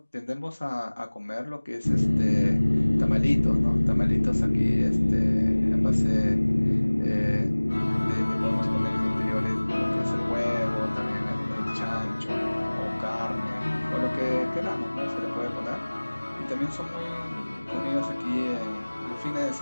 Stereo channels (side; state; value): both; inverted; correlation -1.00